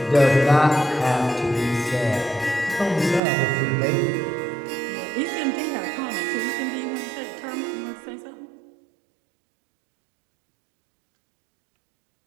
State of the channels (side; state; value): left; drops out; at 3.2 s